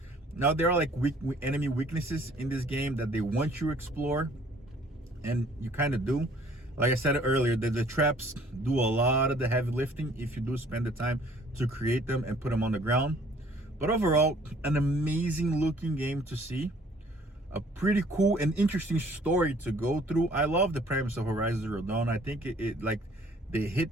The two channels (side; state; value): both; normal; correlation 0.57